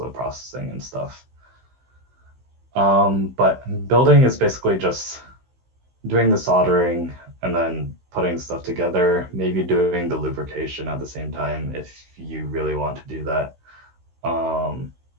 the processing and stuff. But building is basically just doing the soldering and then putting stuff together, maybe doing the lubrication at the same time if you really want to do that.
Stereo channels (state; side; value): late; left; 16 ms